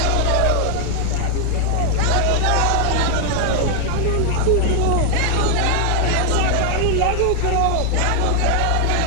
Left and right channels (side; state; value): both; different; correlation 0.00